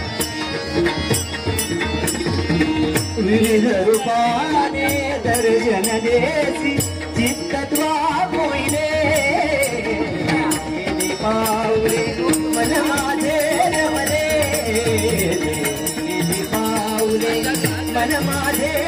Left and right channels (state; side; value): identical; both; correlation 1.00